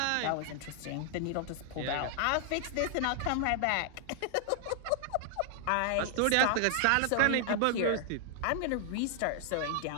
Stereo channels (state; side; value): different; both; correlation 0.00